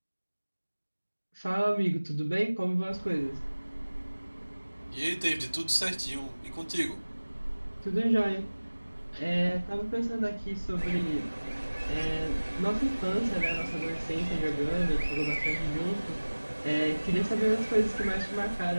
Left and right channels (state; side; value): inverted; both; correlation -1.00